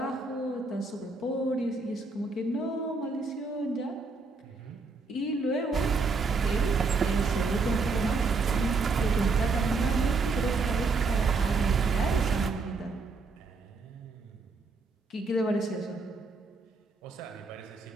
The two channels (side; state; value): left; quieter; 4.0 dB